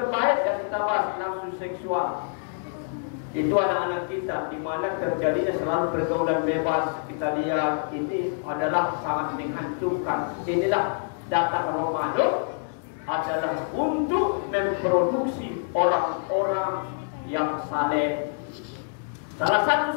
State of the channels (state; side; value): silent; right; digital silence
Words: yang kita bahas, nafsu seksual. Itu anak-anak kita, di mana terjadinya selalu pergaulan bebas. Kita lihat ini adalah sangat menghancurkan. Inilah datang Ramadan adalah untuk memproduksi orang-orang yang saleh. Salah satu